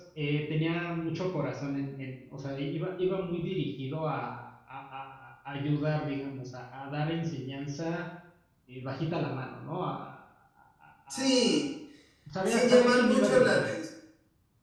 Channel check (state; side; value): identical; both; correlation 1.00